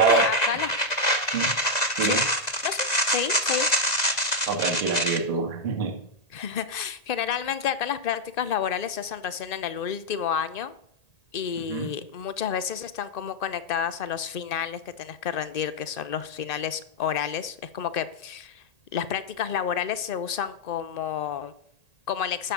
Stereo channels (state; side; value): late; right; 2.0 ms